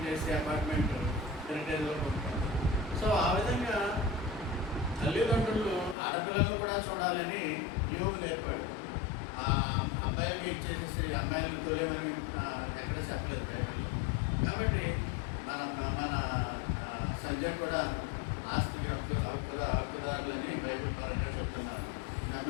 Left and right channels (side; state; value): right; drops out; at 6.0 s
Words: చేసి అపార్ట్మెంట్ హెరిటేజ్లో కొట్టుకుంటారు. సో ఆ విధంగా తల్లిదండ్రులు ఆడపిల్లలను కూడా చూడాలని యోగు నేర్పాడు. ఆ అబ్బాయిలకి ఇచ్చేసేసి అమ్మాయిలకు తోలేమని ఎక్కడ చెప్పలేదు బైబిల్లో. కాబట్టి మన సంజయ్ కూడా ఆస్తికి హక్కుదారులని బైబిల్ పరంగా చెప్తున్నారు.